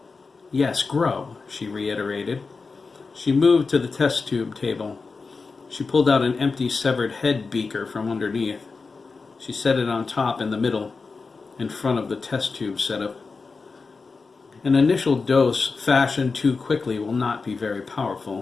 "Yes, grow," she reiterated. She moved to the test tube table. She pulled out an empty severed head beaker from underneath. She set it on top in the middle, in front of the test tube setup. "An initial dose fashioned too quickly will not be very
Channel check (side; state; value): right; quieter; 4.4 dB